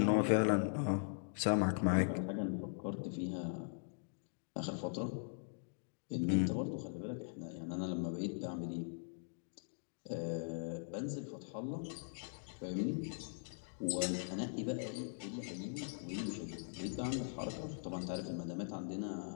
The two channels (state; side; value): silent; right; digital silence